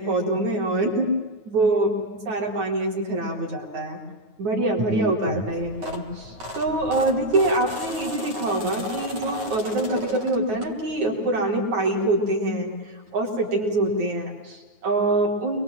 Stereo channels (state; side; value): late; left; 9.3 ms